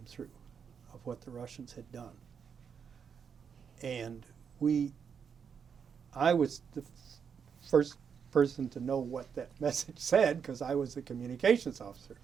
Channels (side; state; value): left; quieter; 6.9 dB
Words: through of what the Russians had done. And I was the first person to know what that message said because I was the communications officer.